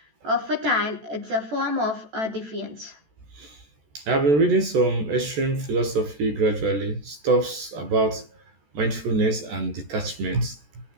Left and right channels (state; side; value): late; left; 14 ms